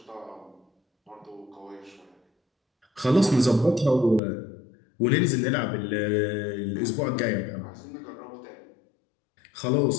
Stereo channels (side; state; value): right; drops out; at 4.2 s